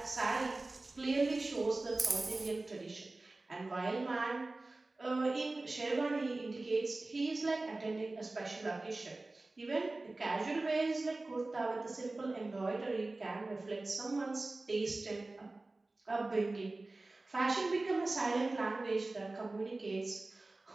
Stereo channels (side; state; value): left; quieter; 3.1 dB